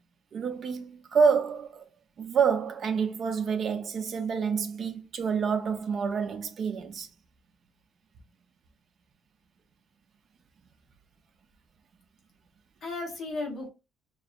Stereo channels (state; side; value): quieter; left; 5.5 dB